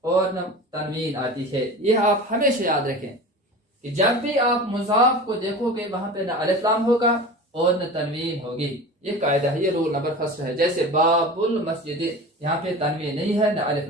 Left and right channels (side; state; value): both; normal; correlation 0.34